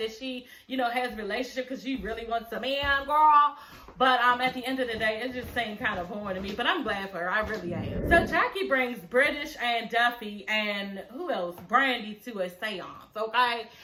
she, you know, has a relationship because she really wants a man, girl. But at the end of the day, it just seemed kind of boring to me. But I'm glad for her. I really am. So Jackie brings British and Duffy and who else? Brandy to a seance, okay?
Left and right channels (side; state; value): both; identical; correlation 1.00